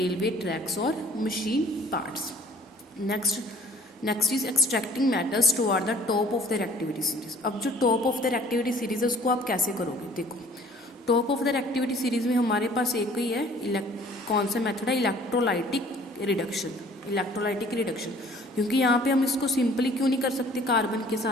ट्रैक्स और machine parts. Next is extracting metals toward the top of the reactivity series. अब जो top of the reactivity series है उसको आप कैसे करोगे, देखो top of the reactivity series में हमारे पास एक ही है, कौन सा मेथड है, इलेक्ट्रोलाइटिक रिडक्शन। Electrolytic reduction. क्योंकि यहाँ पे हम इसको सिंपली क्यों नहीं कर सकते कार्बन के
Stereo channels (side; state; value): both; normal; correlation 0.53